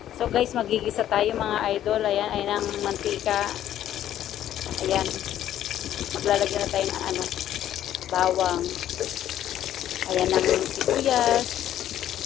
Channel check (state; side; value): quieter; right; 11.6 dB